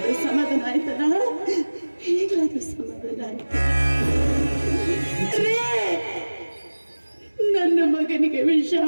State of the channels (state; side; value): inverted; both; correlation -1.00